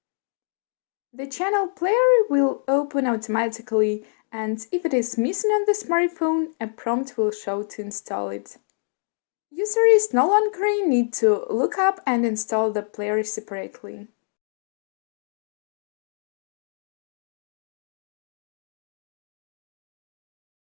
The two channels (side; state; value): right; silent; digital silence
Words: The channel player will open automatically, and if it is missing on the smartphone, a prompt will show to install it. Users no longer need to look up and install the player separately.